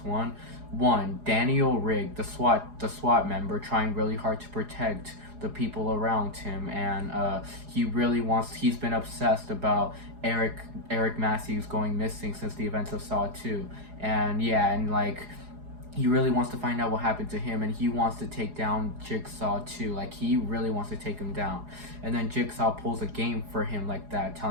one. Daniel Rigg, the SWAT member, trying really hard to protect the people around him, and he's been obsessed about Eric Matthews going missing since the events of Saw 2. And yeah, and like he really wants to find out what happened to him, and he wants to take down Jigsaw too. Like, he really wants to take him down. And then Jigsaw pulls a game for him like that,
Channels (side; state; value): left; late; 4.8 ms